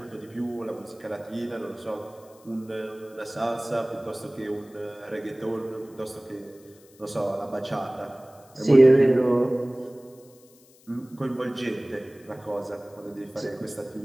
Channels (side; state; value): left; noise; hiss, 27 dB below the sound